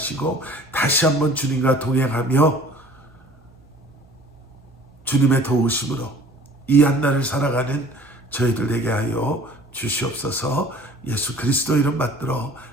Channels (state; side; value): noise; right; hum, 29 dB below the sound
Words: 다시 한번 주님과 동행하며 주님의 도우심으로 이 한날을 살아가는 저희들 되게 하여 주시옵소서. 예수 그리스도 이름 받들어